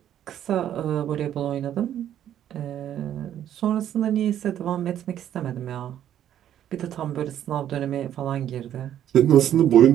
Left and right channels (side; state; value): left; quieter; 10.8 dB